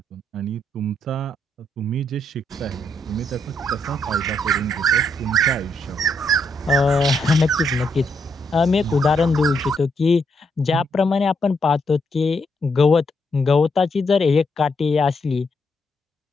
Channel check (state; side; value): normal; both; correlation 0.77